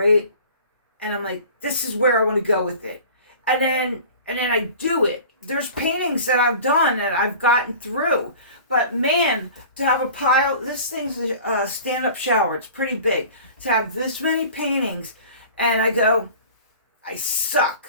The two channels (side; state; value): both; inverted; correlation -0.42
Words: and I'm like, this is where I want to go with it, and then I do it. There's paintings that I've done and I've gotten through, but man, to have a pile, this thing's a stand-up shower. It's pretty big. To have this many paintings, and I go, I